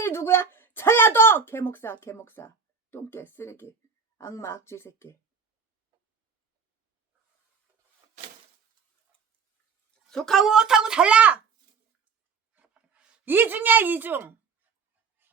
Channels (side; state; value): left; quieter; 5.6 dB